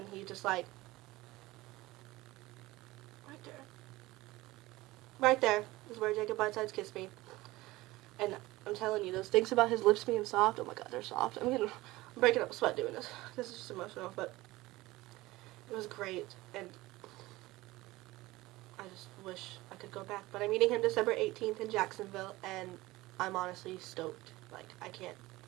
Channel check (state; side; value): quieter; left; 19.3 dB